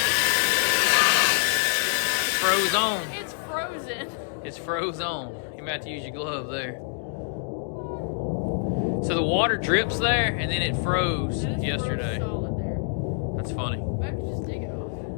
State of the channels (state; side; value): silent; right; digital silence